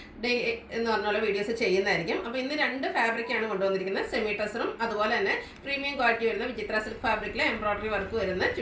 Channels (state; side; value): identical; both; correlation 1.00